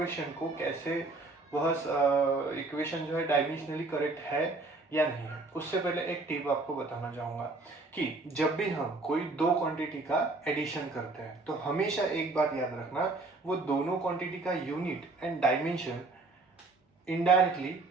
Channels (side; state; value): left; quieter; 3.3 dB